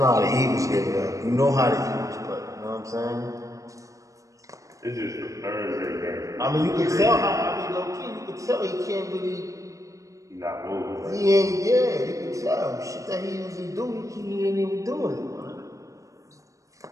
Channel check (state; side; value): late; left; 0.16 ms